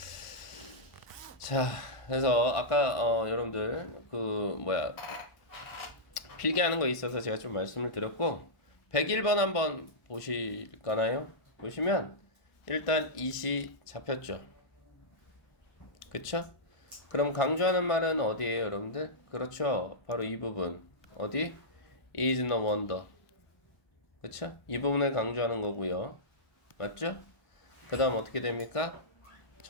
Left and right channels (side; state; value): right; late; 1.4 ms